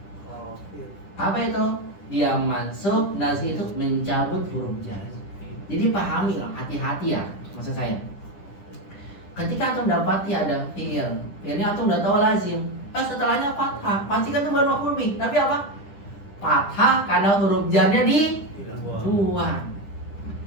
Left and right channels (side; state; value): right; late; 10 ms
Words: Apa itu? Dia mansub, nazi itu mencabut huruf jar. Jadi pahami lah, hati-hati ya maksud saya. Ketika antum dapati ada fi'il, fi'ilnya antum udah tahu lazim. Setelahnya fathah, pasti kan itu baru maf'ul bih. Tapi apa? Fathah karena huruf jarnya dibuang.